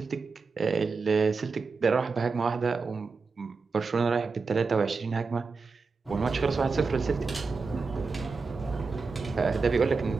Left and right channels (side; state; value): left; quieter; 4.5 dB